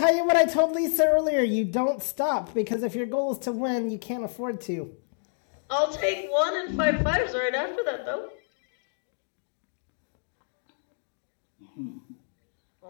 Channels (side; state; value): right; silent; digital silence